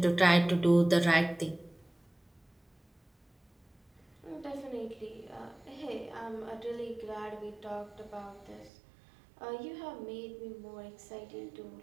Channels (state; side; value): drops out; left; at 8.7 s